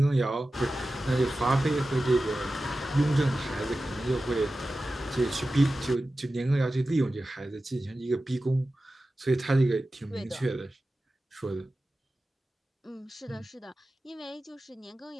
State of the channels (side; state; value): both; normal; correlation 0.94